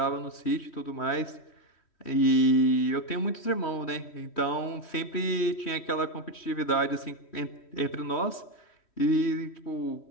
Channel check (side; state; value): right; late; 3.1 ms